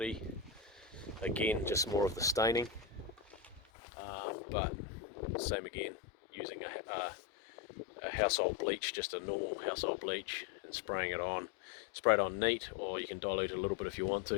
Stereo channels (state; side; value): drops out; right; at 3.6 s